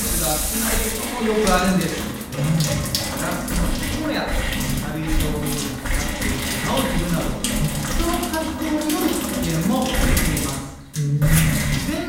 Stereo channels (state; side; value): identical; both; correlation 1.00